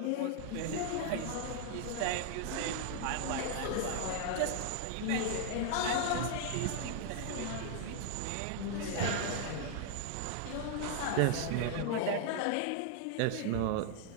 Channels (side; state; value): both; different; correlation 0.00